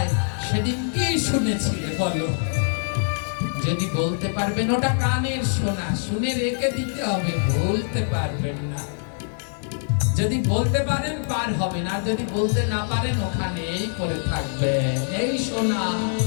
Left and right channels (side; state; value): right; silent; digital silence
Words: সেদিন কি শুনেছিলে বলো? যদি বলতে পারবেন ওটা কানের শোনা, শুনে রেখে দিতে হবে, বলতে পারবেন না। যদি বলতে পারেন পার হবেন, আর যদি বলতে না পারেন ওখানেই করে থাকবে। এই শোনা